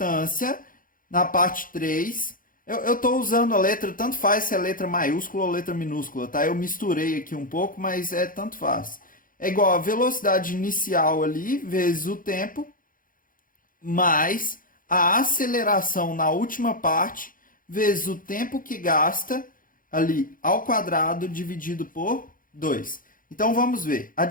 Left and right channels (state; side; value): late; right; 0.40 ms